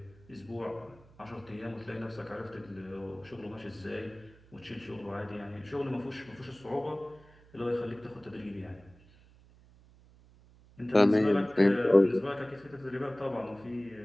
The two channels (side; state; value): right; noise; hum, 25 dB below the sound